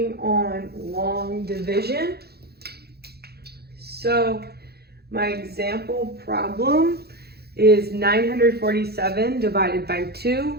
on long division. So my example problem is 947 divided by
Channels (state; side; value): late; left; 0.46 ms